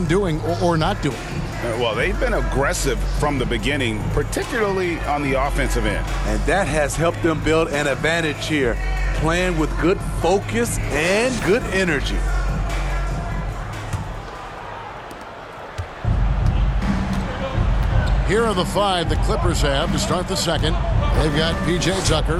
doing or not doing? Well, they've been aggressive from the beginning, particularly on the offensive end. And that has helped them build an advantage here, playing with good focus and good energy. Here are the five the Clippers have to start the second. They've got P.J.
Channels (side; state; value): both; identical; correlation 1.00